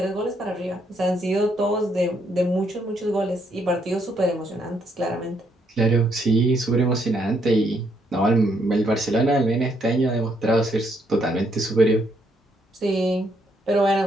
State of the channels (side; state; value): both; normal; correlation 0.73